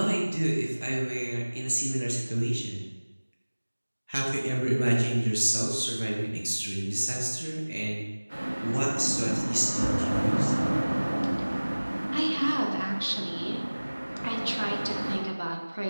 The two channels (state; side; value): inverted; both; correlation -1.00